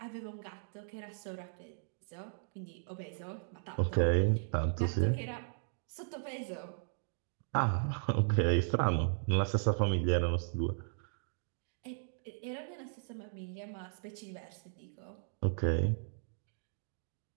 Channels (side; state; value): left; silent; digital silence